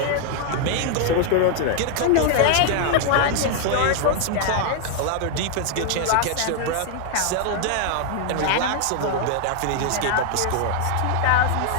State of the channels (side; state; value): both; different; correlation 0.00